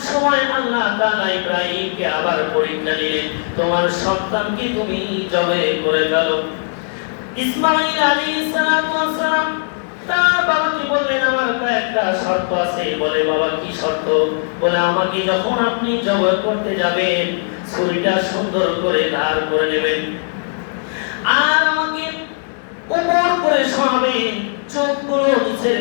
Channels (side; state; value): right; silent; digital silence